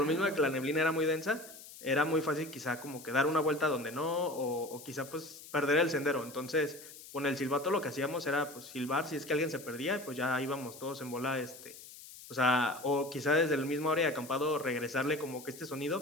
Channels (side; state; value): left; noise; hiss, 16 dB below the sound